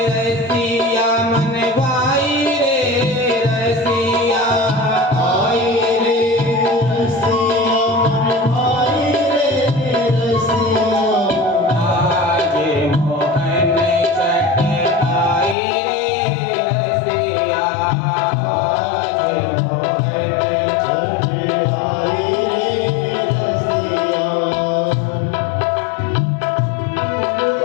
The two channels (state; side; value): drops out; right; at 15.6 s